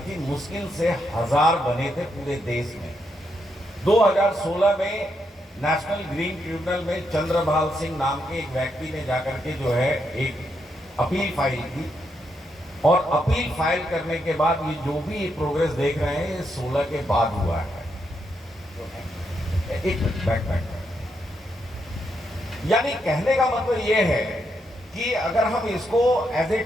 मुश्किल से 1000 बने थे पूरे देश में। 2016 में नेशनल ग्रीन ट्रिब्यूनल में चंद्रभाल सिंह नाम के एक व्यक्ति ने जाकर के जो है एक अपील फाइल की और अपील फाइल करने के बाद ये जो भी प्रोग्रेस देख रहे हैं ये 16 के बाद हुआ है। एक बैक यानी कहने का मतलब ये है कि अगर हम इसको एज ए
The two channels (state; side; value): normal; both; correlation 0.80